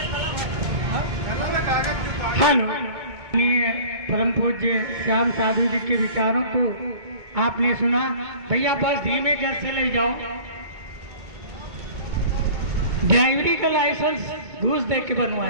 हेलो, परम पूज्य श्याम साधु जी के विचारों को आपने सुना। भैया बस धीमे घर से ले जाओ। ड्राइवरी का लाइसेंस घूस दे के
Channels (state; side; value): late; left; 2.2 ms